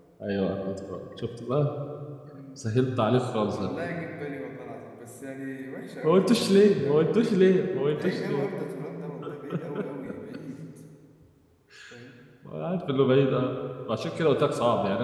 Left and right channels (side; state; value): both; identical; correlation 1.00